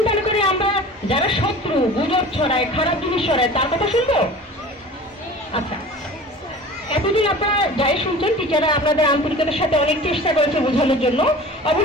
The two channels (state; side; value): normal; both; correlation 0.40